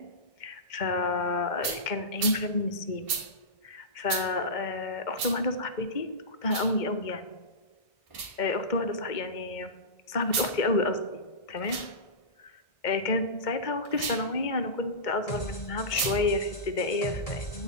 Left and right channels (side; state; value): right; late; 1.6 ms